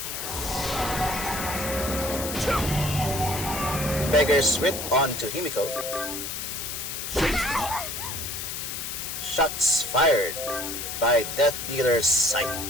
Beggar's Wit onto Himiko. Shots fired by Death Dealer's Scythe.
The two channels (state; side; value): noise; left; hiss, 5 dB below the sound